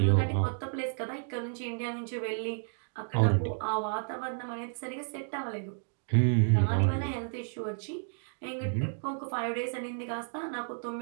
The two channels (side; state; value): left; silent; digital silence